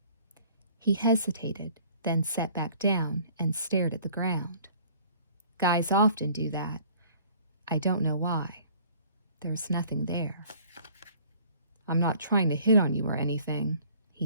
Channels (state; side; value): inverted; both; correlation -0.54